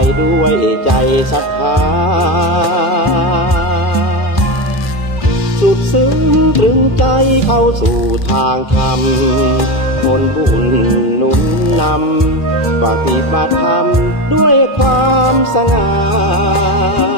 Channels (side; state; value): right; late; 2.4 ms